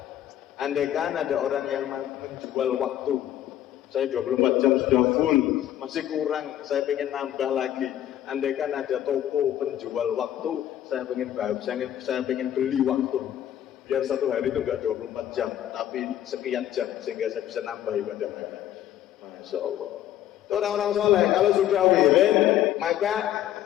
Andaikan ada orang yang menjual waktu, saya 24 jam sudah full, masih kurang, saya pengen nambah lagi. Andaikan ada toko penjual waktu, saya pengen beli waktu. Biar satu hari itu enggak 24 jam, tapi sekian jam, sehingga saya bisa nambah ibadah mereka. Masya Allah. Itu orang-orang soleh, kalau sudah wirid, maka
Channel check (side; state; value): right; quieter; 11.8 dB